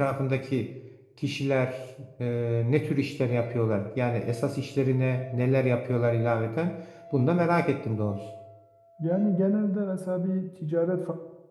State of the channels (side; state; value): both; identical; correlation 1.00